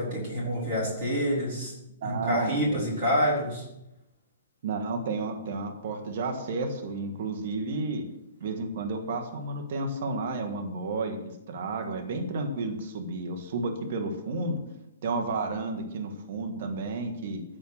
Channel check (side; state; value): both; inverted; correlation -0.48